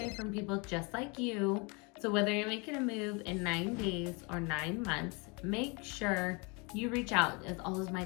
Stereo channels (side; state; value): right; quieter; 30.7 dB